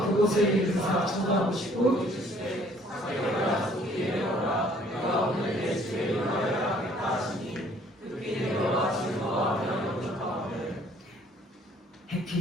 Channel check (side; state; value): both; normal; correlation 0.59